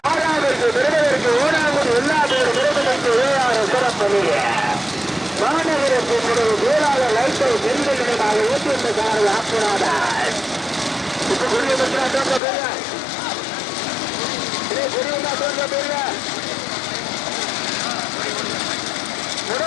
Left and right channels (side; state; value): right; drops out; at 12.4 s